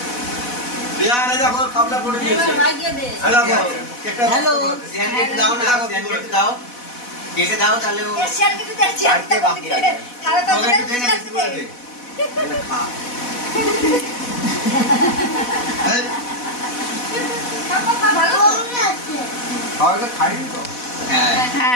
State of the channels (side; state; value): right; late; 4.1 ms